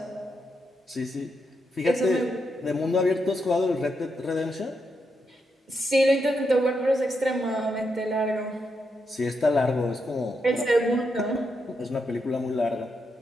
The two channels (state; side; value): normal; both; correlation 0.82